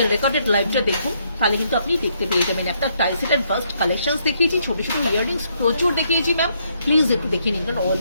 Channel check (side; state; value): both; inverted; correlation -0.73